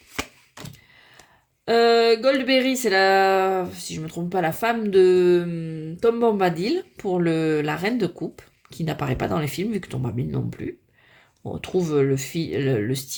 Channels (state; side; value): identical; both; correlation 1.00